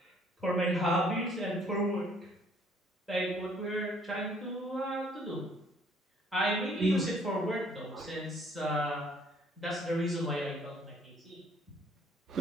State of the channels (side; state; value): both; normal; correlation 0.61